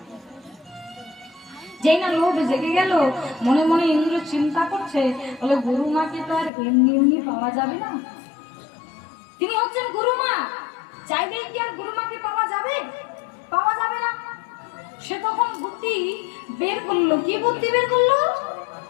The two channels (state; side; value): drops out; right; at 6.5 s